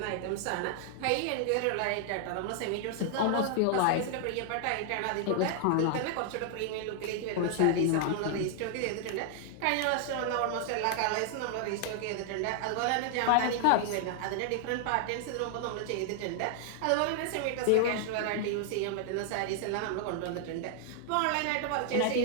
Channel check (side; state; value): both; different; correlation 0.00